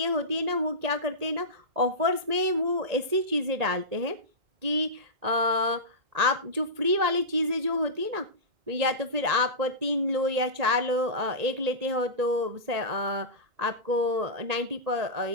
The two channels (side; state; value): left; late; 1.9 ms